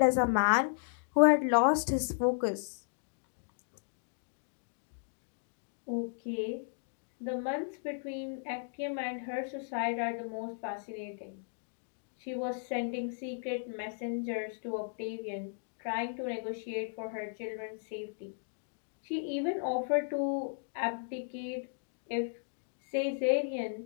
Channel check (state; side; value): silent; right; digital silence